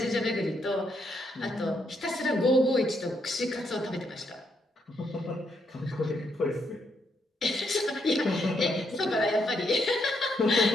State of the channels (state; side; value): normal; both; correlation 0.77